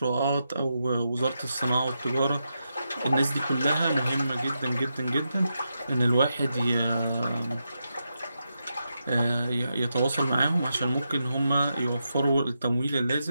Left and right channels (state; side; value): inverted; both; correlation -0.86